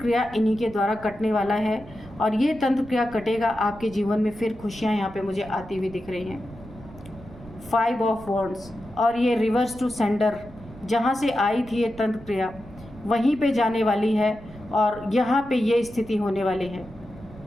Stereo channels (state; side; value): noise; right; rumble, 18 dB below the sound